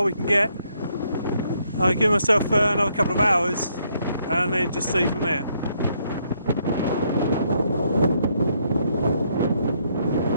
we can get. I'll give myself another couple of hours and then just see from there.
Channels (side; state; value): both; inverted; correlation -0.73